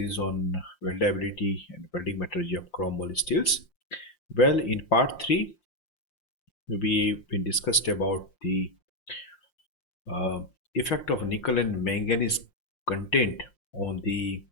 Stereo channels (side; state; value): right; late; 5.7 ms